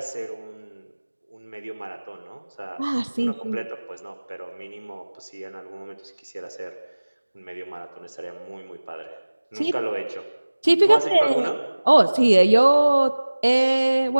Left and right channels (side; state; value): both; inverted; correlation -1.00